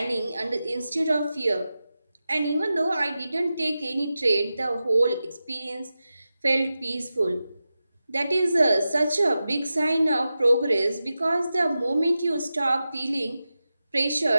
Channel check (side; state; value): both; inverted; correlation -0.93